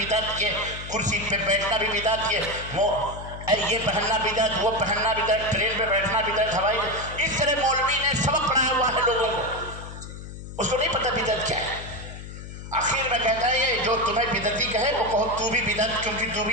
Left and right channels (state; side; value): noise; left; hum, 11 dB below the sound